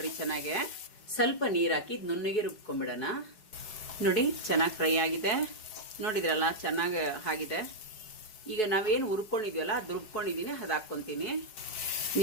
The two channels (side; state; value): right; late; 4.7 ms